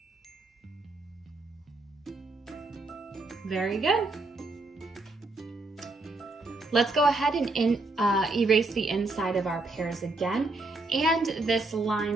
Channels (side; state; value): left; quieter; 3.2 dB